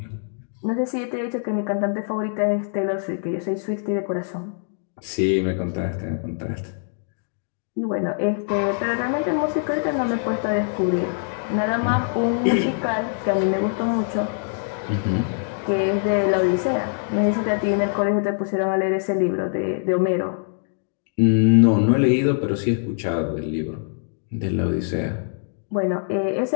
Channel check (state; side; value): silent; right; digital silence